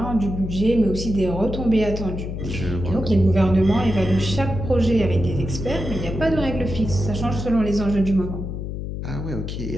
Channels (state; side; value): noise; left; hum, 5 dB below the sound